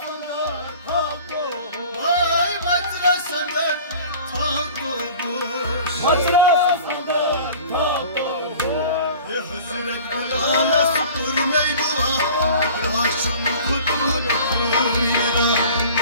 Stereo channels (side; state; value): both; inverted; correlation -0.44